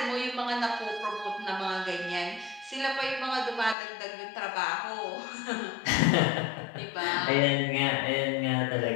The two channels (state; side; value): drops out; right; at 3.8 s